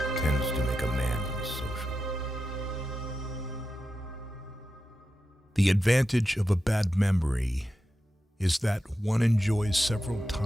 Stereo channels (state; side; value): normal; both; correlation 0.90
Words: tends to make a man unsocial. The advantage of a bad memory is that one enjoys several